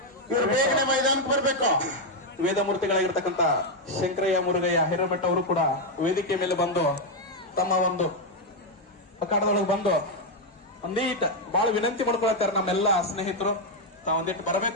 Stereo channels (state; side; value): normal; both; correlation 0.02